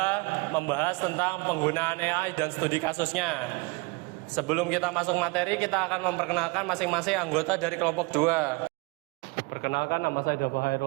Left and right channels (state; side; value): quieter; left; 27.0 dB